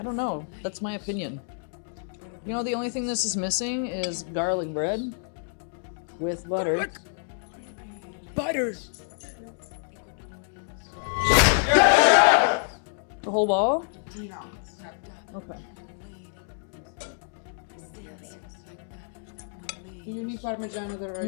I don't know. That's my opinion. You know, the only thing this is missing is garlic bread with butter. Garlic. Butter. The whole ball? No. Okay. You need Parmigiano the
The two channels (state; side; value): silent; right; 59 dB below the other